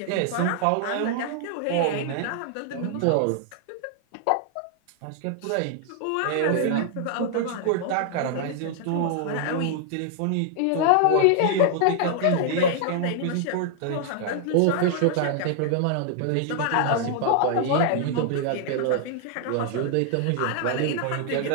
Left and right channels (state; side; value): different; both; correlation 0.00